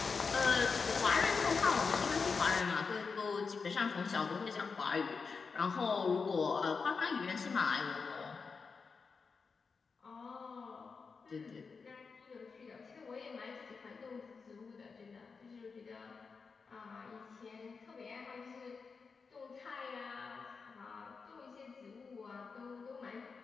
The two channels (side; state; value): right; quieter; 5.0 dB